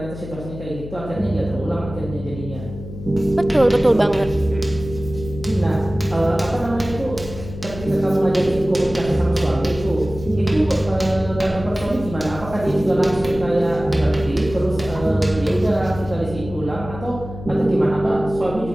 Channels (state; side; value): noise; left; hum, 12 dB below the sound